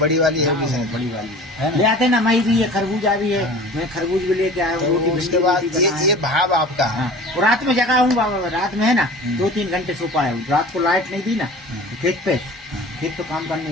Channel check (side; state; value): both; normal; correlation 0.41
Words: वाली है, बड़ी वाली है ले आते ना। मई भी है, खरबूजा भी है। मैं खरबूज भी लेके आया हूँ। रोटी उसके बाद ये भाव आपका। रात में जगा हूँ बाबा, रात में है ना 2-3 घंटे सो पाया हूँ। रात को लाइट नहीं दी ना, खेत तो काम करने